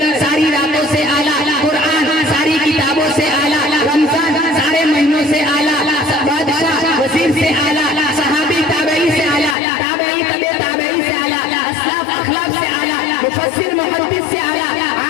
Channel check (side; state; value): right; drops out; at 9.6 s